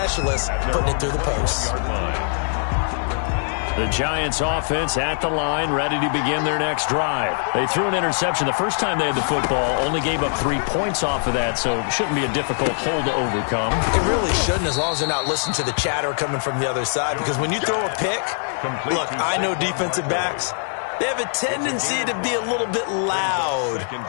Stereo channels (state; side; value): silent; right; 60 dB below the other